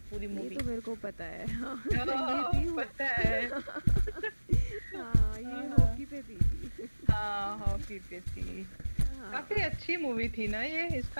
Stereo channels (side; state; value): both; inverted; correlation -1.00